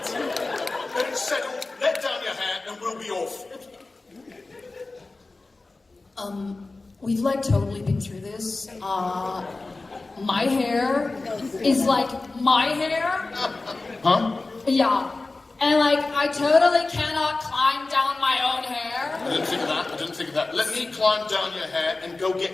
Then it's settled. Let down your hair and we'll be off. We've like totally been through this. My hair is like my hair. Huh? Yeah. And like, I totally cannot climb down my own hair. I didn't think of that. Let me climb down your hair and go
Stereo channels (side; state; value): right; quieter; 3.4 dB